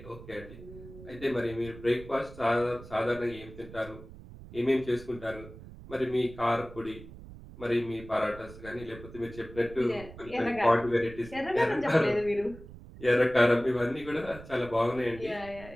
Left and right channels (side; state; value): right; noise; rumble, 16 dB below the sound